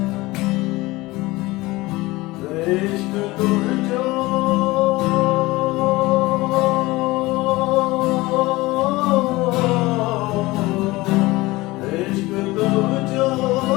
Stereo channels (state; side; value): quieter; right; 20.5 dB